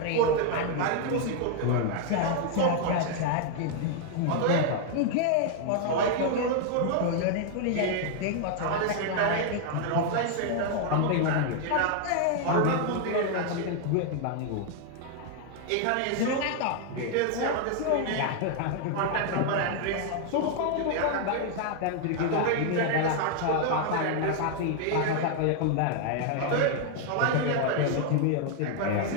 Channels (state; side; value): different; both; correlation 0.00